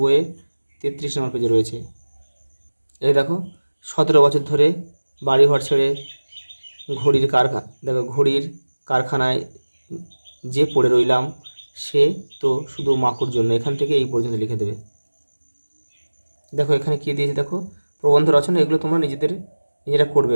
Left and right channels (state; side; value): inverted; both; correlation -1.00